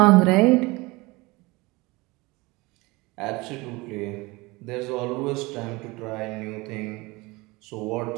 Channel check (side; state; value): left; quieter; 23.4 dB